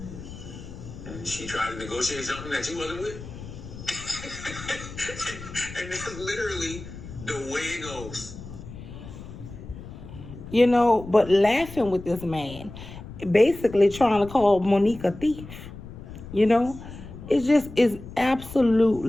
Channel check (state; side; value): noise; left; rumble, 13 dB below the sound